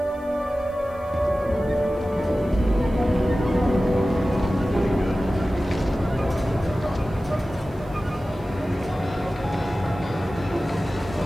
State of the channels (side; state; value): right; noise; hiss, 30 dB below the sound